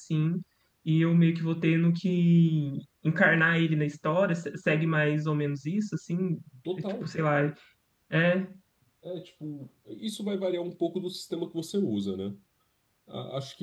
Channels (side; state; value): both; identical; correlation 1.00